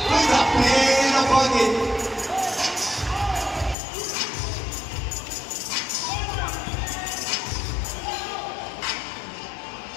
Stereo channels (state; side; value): drops out; right; at 3.8 s